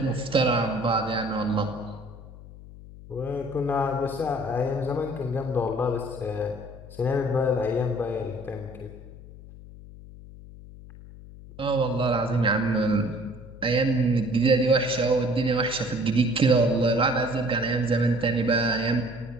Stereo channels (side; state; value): left; noise; hum, 17 dB below the sound